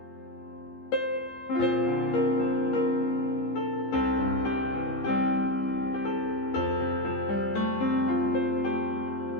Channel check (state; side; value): late; right; 15 ms